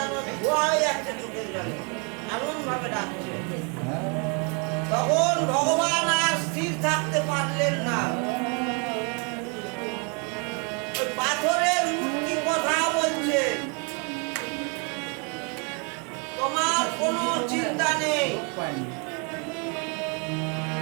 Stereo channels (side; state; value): left; quieter; 35.4 dB